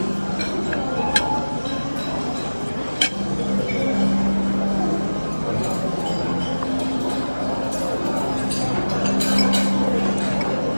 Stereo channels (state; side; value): inverted; both; correlation -1.00